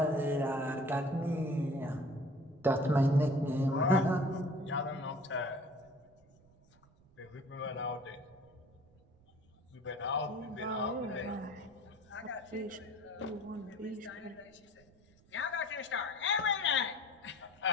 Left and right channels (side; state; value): right; noise; rumble, 28 dB below the sound